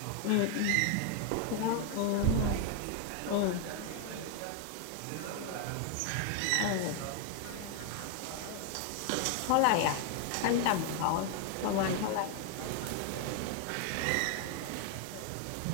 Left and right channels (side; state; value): both; different; correlation 0.01